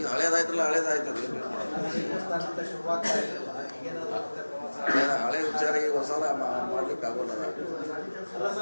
ಹಳೇದಾಯ್ತಲ್ಲ, ಹಳೇದಾಯ್ತದ. ಶುರುವಾಗ್ತಾ ಇರಲಿಲ್ಲ. ಈಗೇನಾದ್ರು ಹಳೆ ವಿಚಾರ ಈಗ ಹೊಸ ಮಾಡ್ಲಿಕ್ಕೆ ಆಗೋಲ್ಲ. ಅಲ್ಲ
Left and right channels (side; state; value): both; inverted; correlation -1.00